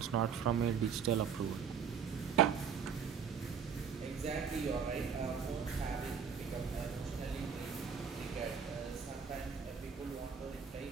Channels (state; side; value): quieter; left; 6.8 dB